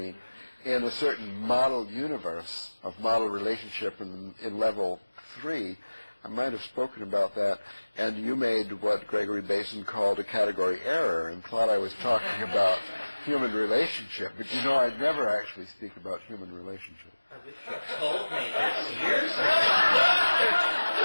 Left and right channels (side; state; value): both; inverted; correlation -1.00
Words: in a certain model universe of model relationship in level 3, I might have spoken about that, and you made what Gregory Basin called a category error and thought I was talking about human relationship. But you know, I'd never actually speak about human relationship. I wish you told me this years ago.